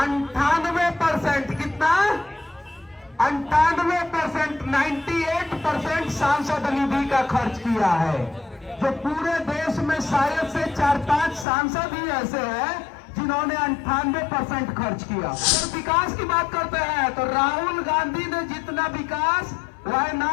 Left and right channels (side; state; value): right; drops out; at 11.5 s